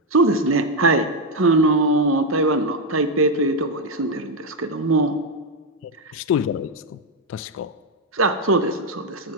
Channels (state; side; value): normal; both; correlation 0.05